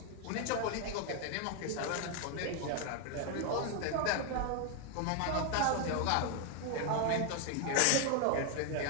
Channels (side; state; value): both; different; correlation 0.01